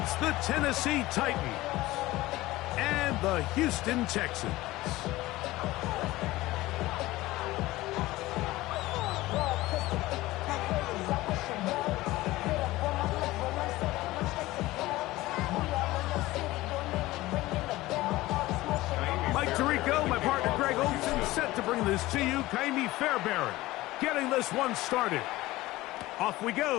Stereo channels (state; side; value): quieter; right; 18.2 dB